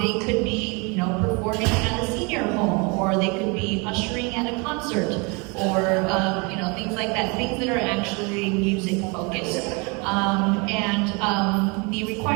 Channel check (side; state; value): left; quieter; 30.4 dB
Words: could be, you know, performing at a senior home, or they could be ushering at a concert, or you know, things like that, things that are actually music focused. The